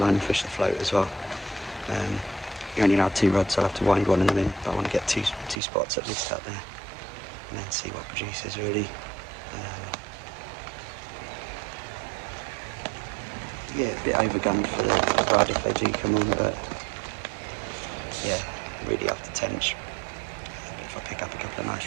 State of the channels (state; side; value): drops out; left; at 5.6 s